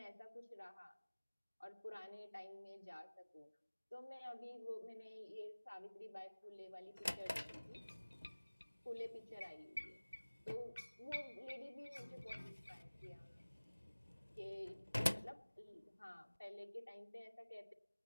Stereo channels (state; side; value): inverted; both; correlation -1.00